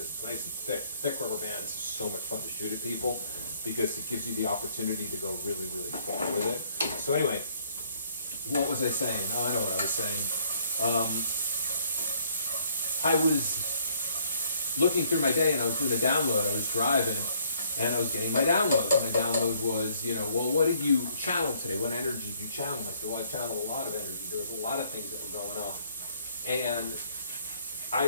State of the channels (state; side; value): inverted; both; correlation -0.64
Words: it's nice and thick. Thick rubber bands are so much fun to shoot at people because it gives you the opportunity to go really, really far with it. So anyway, what was I saying? Oh, I know what I was saying. I was looking through my day, and I was doing a download. I was driving, and I was getting my download. My download was, you know, well, what did you channel today? What energy did you channel? I said, well, I channeled a lot of energy. There was a lot of things that were going on. And I